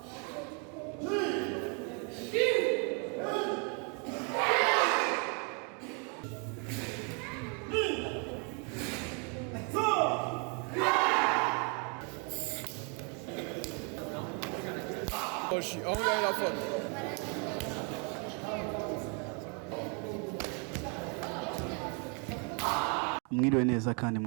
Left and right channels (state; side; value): quieter; left; 36.1 dB